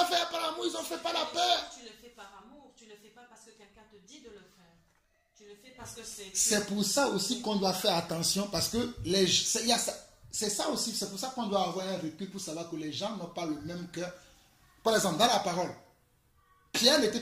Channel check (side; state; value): both; identical; correlation 1.00